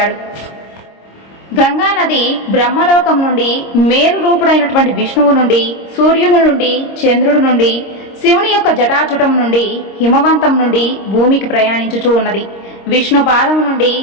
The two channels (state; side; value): late; right; 26 ms